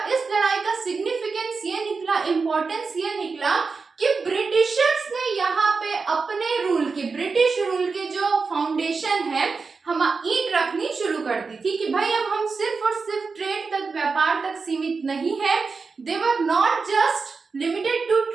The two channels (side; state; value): left; quieter; 4.6 dB